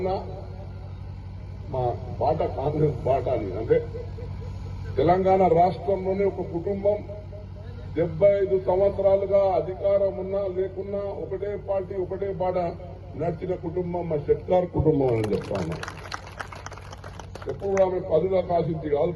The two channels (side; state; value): both; identical; correlation 1.00